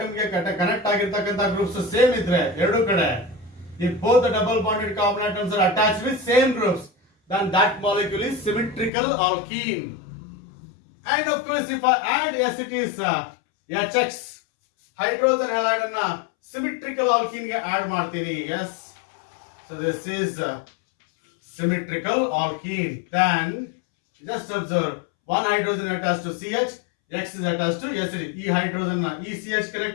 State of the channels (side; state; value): right; drops out; at 8.9 s